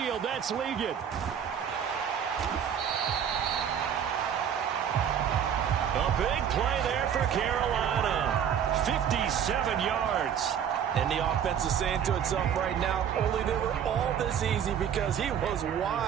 That's Ligon. A big play there for Carolina. 57 yards. And the offense is saying to itself right now, only they were all this easy because he was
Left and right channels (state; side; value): quieter; left; 8.5 dB